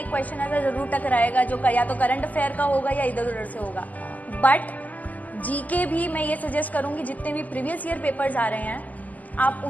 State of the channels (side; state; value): right; late; 0.079 ms